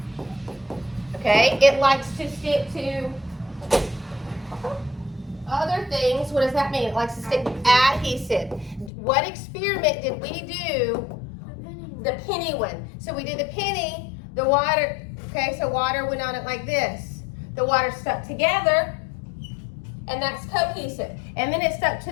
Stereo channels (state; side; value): drops out; right; at 8.9 s